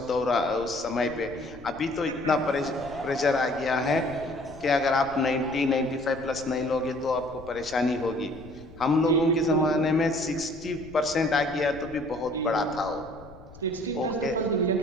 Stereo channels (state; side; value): noise; left; rumble, 20 dB below the sound